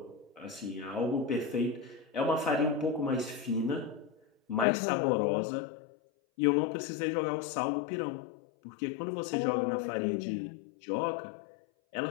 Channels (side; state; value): right; drops out; at 4.7 s